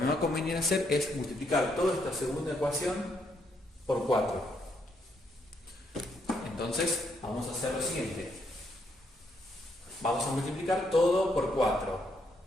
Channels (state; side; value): normal; both; correlation 0.75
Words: va a convenir hacer es multiplicar toda esta segunda ecuación por 4. Entonces vamos a hacer lo siguiente. Vamos a multiplicar todo por 4.